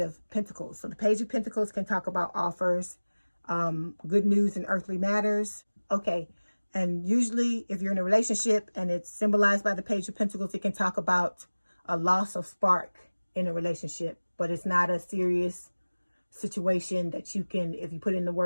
Pentacles. So the Page of Pentacles can talk about offers, good news in earthly matters. Okay, and usually if you're in a relationship and it's symbolized by the Page of Pentacles, it can talk about a loss of spark in a relationship, but it's not a serious situation that you can, if you put in the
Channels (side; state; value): both; inverted; correlation -1.00